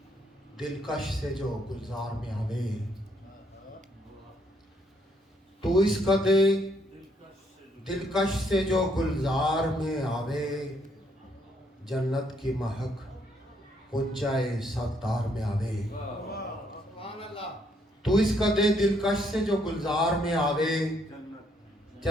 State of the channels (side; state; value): both; normal; correlation 0.71